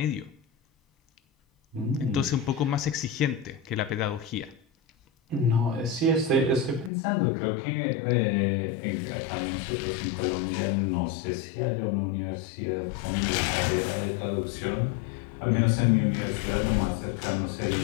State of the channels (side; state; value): right; drops out; at 6.9 s